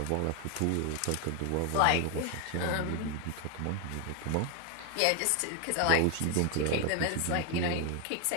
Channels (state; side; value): different; both; correlation 0.01